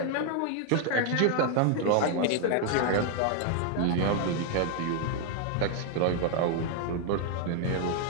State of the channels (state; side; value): different; both; correlation 0.00